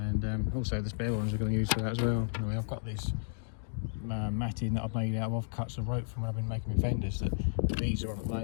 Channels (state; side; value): silent; right; digital silence